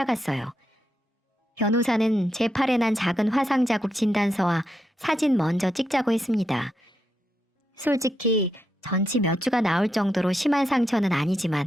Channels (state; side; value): normal; both; correlation 0.83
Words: 변호사는 제 팔에 난 작은 화상 자국 진단서와 사진 먼저 찍자고 했습니다. 솔직히 전치 몇 주가 나올 정도로 심한 상처는